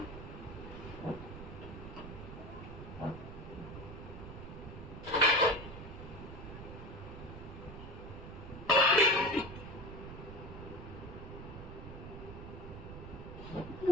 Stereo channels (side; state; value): right; noise; rumble, 10 dB below the sound